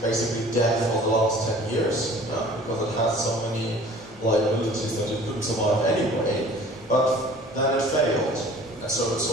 basically dead for the last 10 years, because it had so many liabilities that it couldn't survive anyway. But then it failed, and so it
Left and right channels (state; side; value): normal; both; correlation 0.48